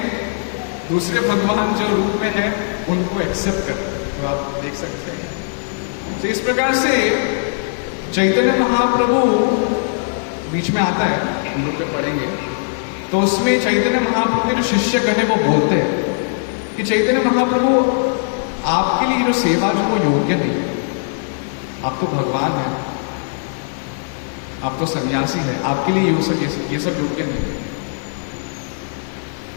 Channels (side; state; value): right; silent; digital silence